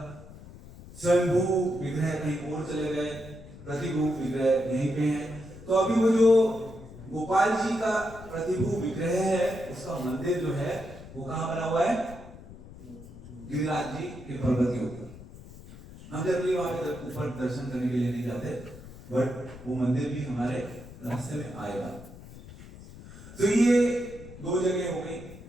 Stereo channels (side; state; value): left; noise; rumble, 17 dB below the sound